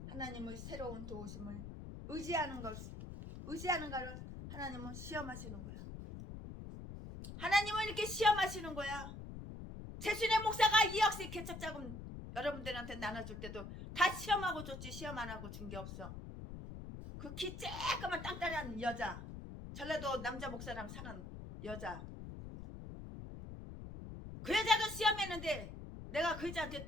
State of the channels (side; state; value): left; noise; rumble, 10 dB below the sound